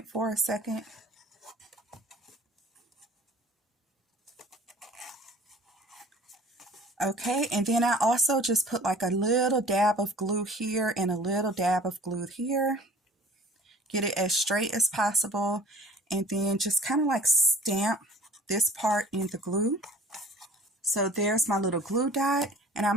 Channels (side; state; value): both; normal; correlation 0.48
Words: for a second. Okay, and then I also just put like a little dab of glue here and a little dab of glue here. Get it as straight as possible, and then just kind of like stamp this part in the glue. So there's my little glue dot, and